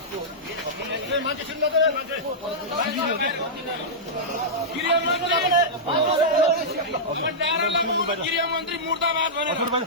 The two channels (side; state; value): both; normal; correlation -0.12